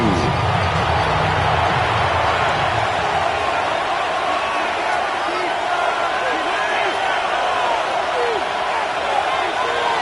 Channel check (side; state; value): both; identical; correlation 1.00